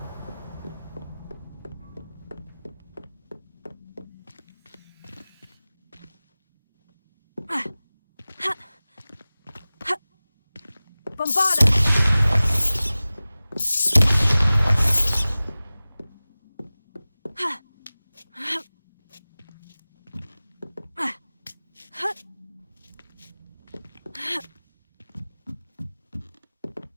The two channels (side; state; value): both; inverted; correlation -0.98